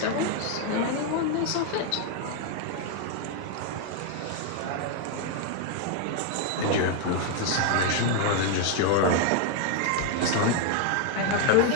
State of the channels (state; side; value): different; both; correlation 0.00